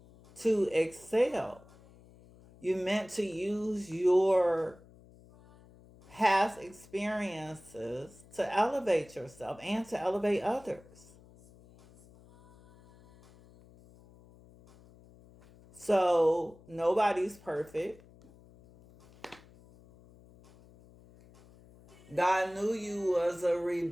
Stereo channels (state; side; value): noise; left; hum, 24 dB below the sound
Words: to excel. You're meant to use your past experiences to elevate yourself and to elevate others. So nobody's perfect. God knew you was a